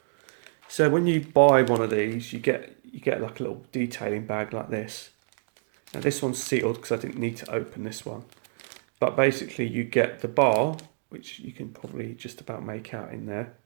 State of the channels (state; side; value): silent; left; digital silence